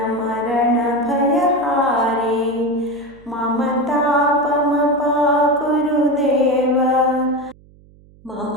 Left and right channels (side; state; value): right; noise; hum, 27 dB below the sound